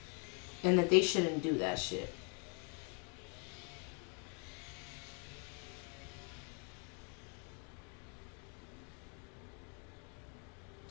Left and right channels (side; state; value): right; quieter; 37.9 dB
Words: And that they shouldn't do that shit.